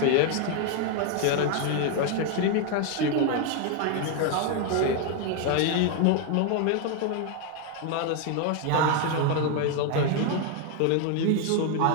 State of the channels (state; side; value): different; both; correlation 0.01